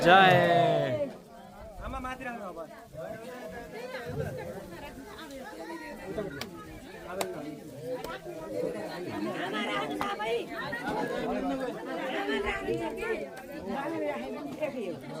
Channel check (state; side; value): identical; both; correlation 1.00